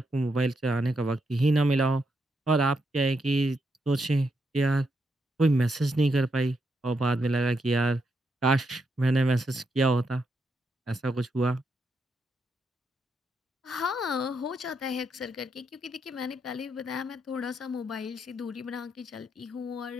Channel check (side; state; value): both; normal; correlation 0.81